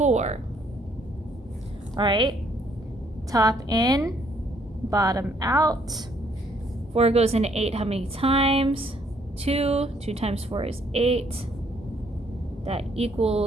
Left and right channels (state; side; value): normal; both; correlation 0.67